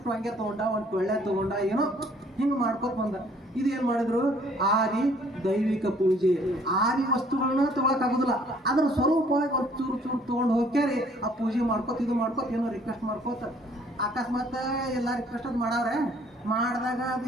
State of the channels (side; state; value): both; normal; correlation 0.60